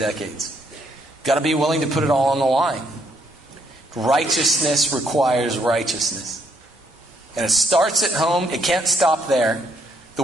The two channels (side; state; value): both; normal; correlation 0.71